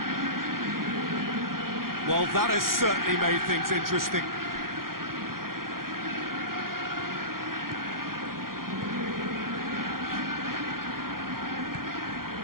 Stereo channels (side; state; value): left; late; 0.92 ms